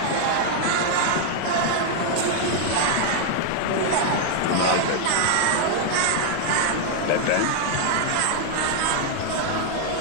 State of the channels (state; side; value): different; both; correlation 0.00